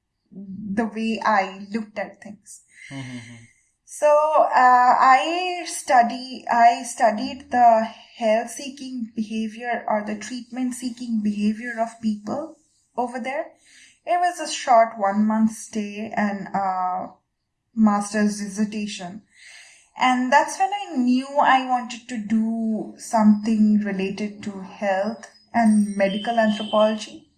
way I looked at things. So I studied the health-seeking behavior or the treatment-seeking behavior of people over there. It was a short 1-month stay and a master's dissertation. And that's when I knew I wanted to do something related to health and medical anthropology.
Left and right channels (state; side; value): identical; both; correlation 1.00